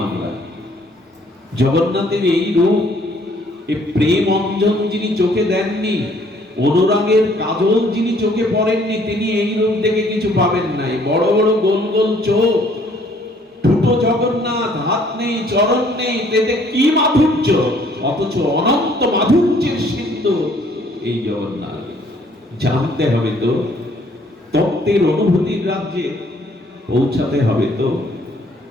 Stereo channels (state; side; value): normal; both; correlation 0.61